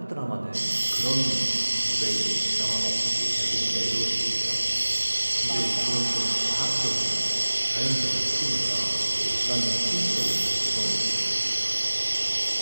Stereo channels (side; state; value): both; inverted; correlation -1.00